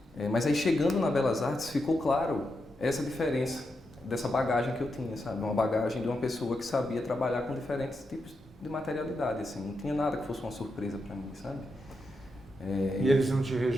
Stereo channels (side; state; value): both; normal; correlation 0.85